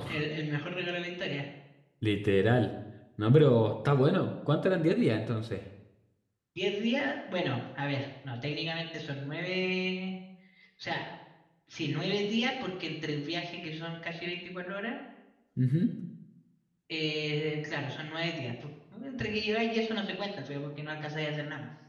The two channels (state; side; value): identical; both; correlation 1.00